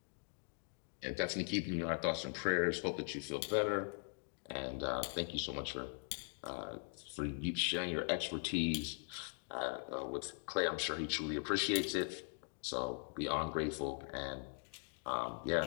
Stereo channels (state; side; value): silent; right; 51 dB below the other